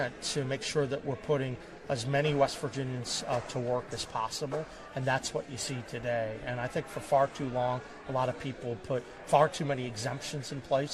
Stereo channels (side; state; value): both; identical; correlation 1.00